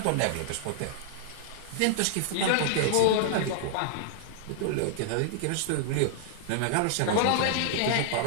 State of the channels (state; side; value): different; both; correlation 0.00